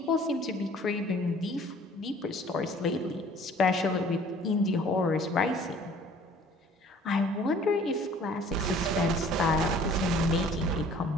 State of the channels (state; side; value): normal; both; correlation 0.52